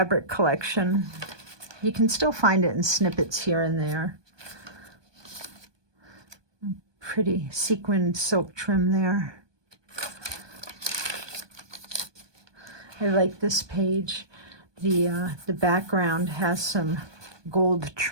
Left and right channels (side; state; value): left; late; 1.2 ms